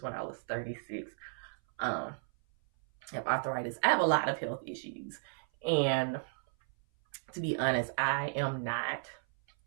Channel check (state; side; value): silent; left; 55 dB below the other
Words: when I was 36. I have arthritis. I have a lot of health issues. And to be honest, I am not